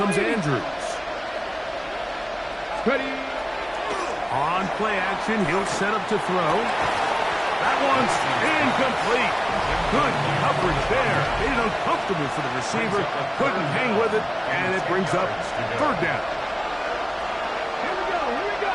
Andrews. Ready. On play action, he'll set up to throw. That one's incomplete. Good coverage there. Made it uncomfortable for the receiver. Couldn't hang with it, and it brings up third down. Here we go. Here we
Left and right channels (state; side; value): identical; both; correlation 1.00